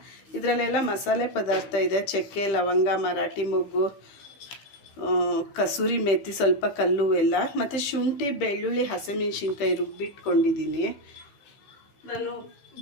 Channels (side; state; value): right; late; 15 ms